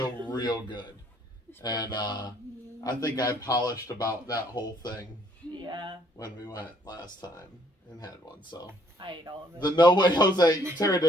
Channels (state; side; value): normal; both; correlation 0.65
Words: it's pretty And good. I think I polished about that whole thing Yeah. when we went last time and had one. So I ate all of it. the No Way Jose, Tara